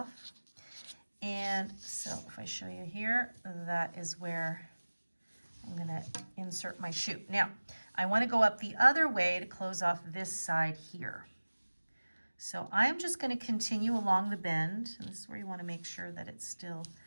And so if I show you here, that is where I'm gonna insert my shoe. Now, I wanna go up the other way to close off this side here. So I'm just gonna continue along the bend, and this is where you wanna make sure that it's still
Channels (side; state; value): both; inverted; correlation -1.00